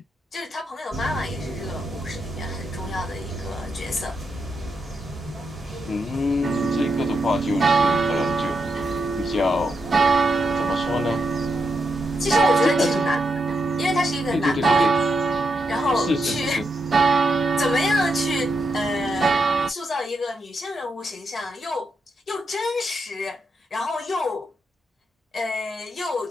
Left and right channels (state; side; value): normal; both; correlation 0.83